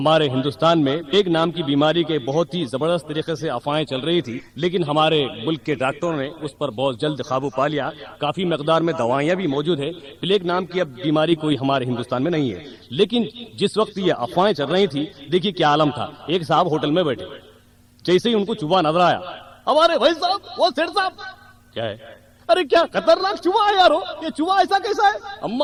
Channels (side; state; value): both; identical; correlation 1.00